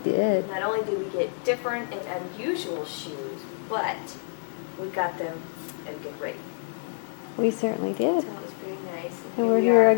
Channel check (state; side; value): silent; right; digital silence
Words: We did. not only did we get different and unusual shoes, but we got them at a good rate. We certainly So did. it was very nice. And we're we here are.